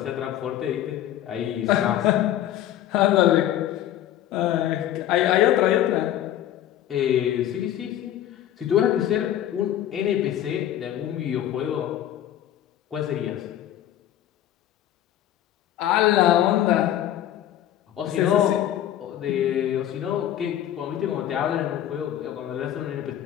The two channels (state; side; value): quieter; right; 12.0 dB